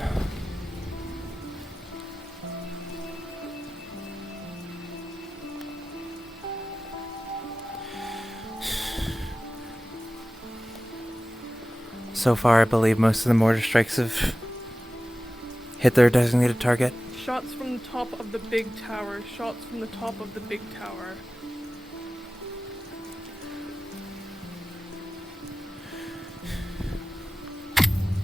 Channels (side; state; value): both; normal; correlation 0.95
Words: So far, I believe most of the mortar strikes have hit their designated target. Shots from the top of the big tower. Shots from the top of the big tower.